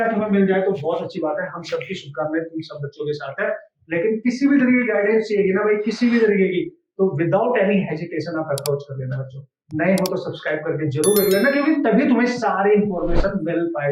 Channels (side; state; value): both; identical; correlation 1.00